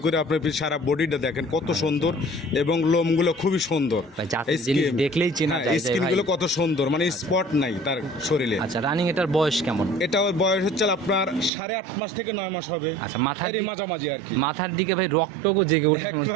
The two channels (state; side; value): drops out; left; at 11.5 s